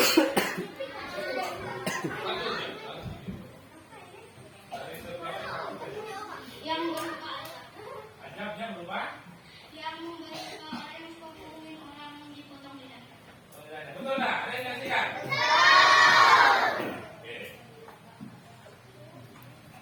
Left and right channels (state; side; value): identical; both; correlation 1.00